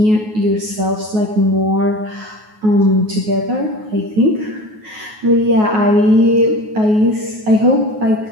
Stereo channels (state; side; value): late; left; 9.4 ms